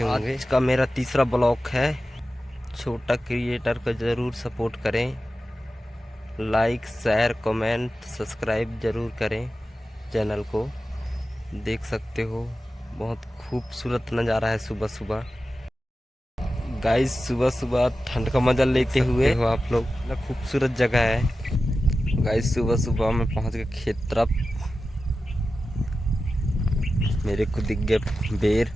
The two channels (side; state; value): both; normal; correlation 0.93